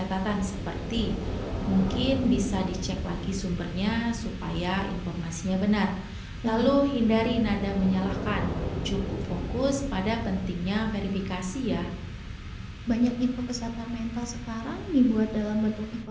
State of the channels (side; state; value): both; identical; correlation 1.00